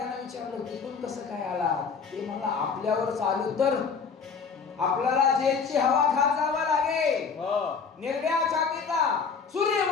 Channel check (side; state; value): right; quieter; 5.6 dB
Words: विचारलं तिकडून कसं काय आला? ते मला आपल्यावर चालू तर आपल्याला जेलची हवा खात जावं लागेल. निर्भया छातीचा